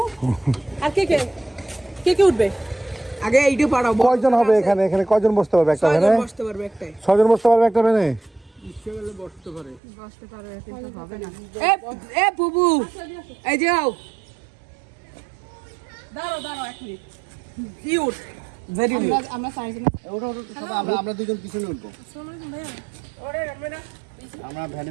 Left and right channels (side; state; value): left; drops out; at 9.8 s